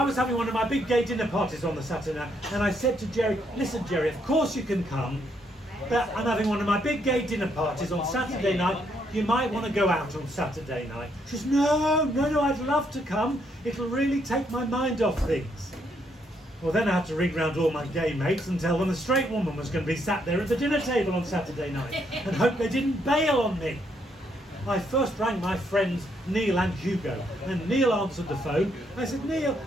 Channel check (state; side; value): normal; both; correlation 0.74